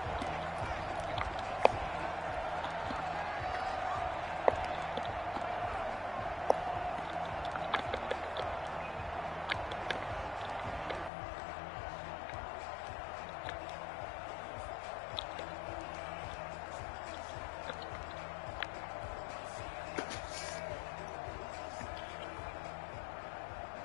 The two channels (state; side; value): drops out; right; at 11.1 s